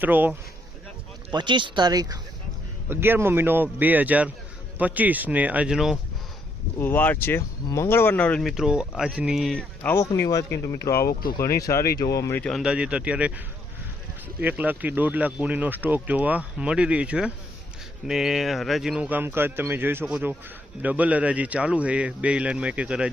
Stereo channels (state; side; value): normal; both; correlation 0.73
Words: 25 તારીખ 11મો મહિનો 2025 ને આજનો વાર છે મંગળવારના રોજ મિત્રો। આજની આવકની વાત કરીએ તો મિત્રો આવક તો ઘણી સારી જોવા મળી છે। અંદાજિત અત્યારે 1 લાખથી 1.5 લાખ ગુણીનો સ્ટોક જોવા મળી રહી છે ને હરાજીનું કામકાજ તમે જોઈ શકો છો। ડબલ હરાજી ચાલુ છે, બે લાઇનમાં એક